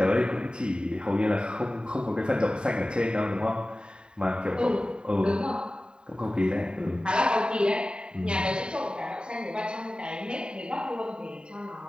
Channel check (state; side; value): late; left; 0.049 ms